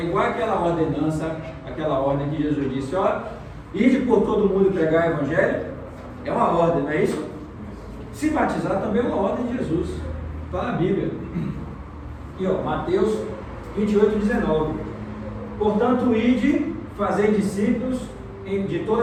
igual aquela ordenança, aquela ordem que Jesus disse, ó, ide por todo mundo pregar o Evangelho, é uma ordem, não é isso? Se batizar também é uma ordem de Jesus, está na Bíblia. E ó, Mateus 28:19. Portanto, ide, fazei discípulos de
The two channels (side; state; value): both; identical; correlation 1.00